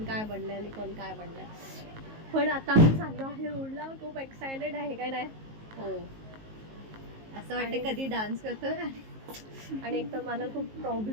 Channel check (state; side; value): late; left; 19 ms